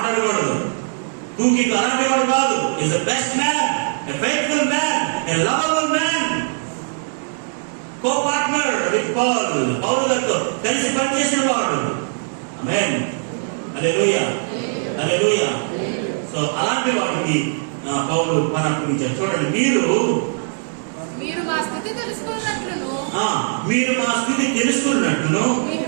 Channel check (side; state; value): left; silent; digital silence